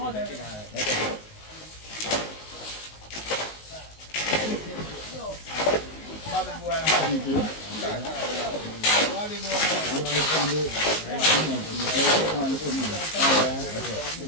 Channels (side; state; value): right; late; 19 ms